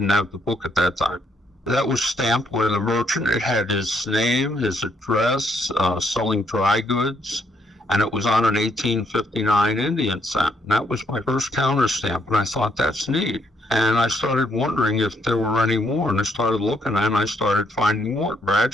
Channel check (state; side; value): normal; both; correlation 0.72